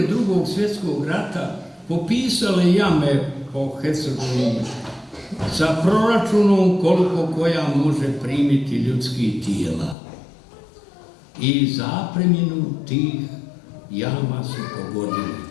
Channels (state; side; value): drops out; right; at 10.0 s